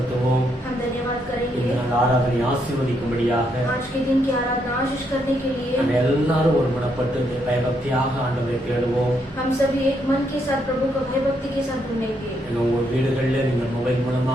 हम धन्यवाद करेंगे. இந்த நாள் ஆராதனை ஆசீர்வதிக்கும்படியாக आज के दिन की आराधना आशीष करने के लिए நம்ம எல்லாரும் ஒருமனப்பட்டு பயபக்தியாக ஆண்டவரை தேடுவோம். हम सभी एक मन के साथ प्रभु को भयभक्ति के साथ ढूंढेंगे. உங்க வீடுகளில் நீங்க மொபைல்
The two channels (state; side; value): normal; both; correlation 0.76